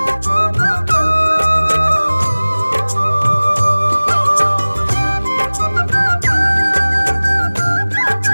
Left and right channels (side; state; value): both; inverted; correlation -1.00